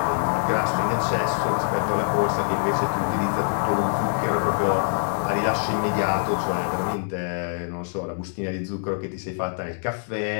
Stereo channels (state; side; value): silent; right; digital silence